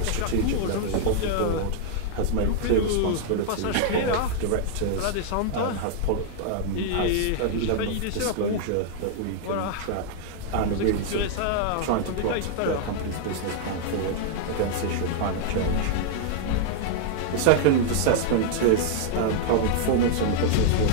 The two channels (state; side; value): different; both; correlation -0.01